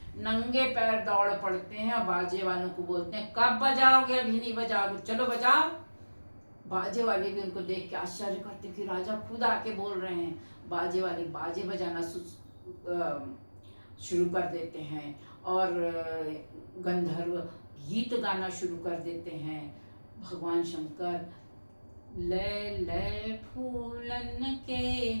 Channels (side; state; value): both; inverted; correlation -1.00